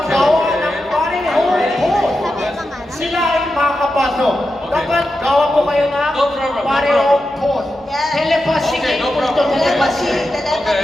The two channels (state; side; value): normal; both; correlation 0.89